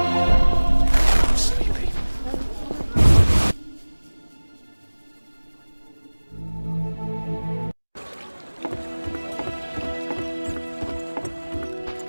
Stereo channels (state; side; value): inverted; both; correlation -1.00